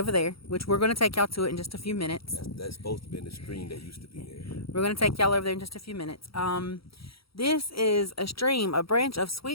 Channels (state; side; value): late; right; 0.75 ms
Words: there, which we're going to take y'all to it in just a few minutes. That's supposed to be in the stream that used to be there. We're going to take y'all over there in just a few minutes. This is a stream, a branch of